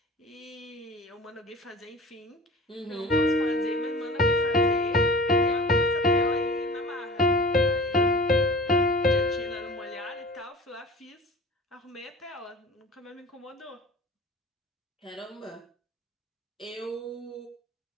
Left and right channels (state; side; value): normal; both; correlation 0.40